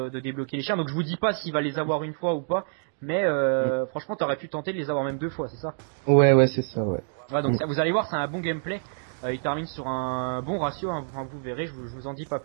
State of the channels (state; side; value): silent; left; digital silence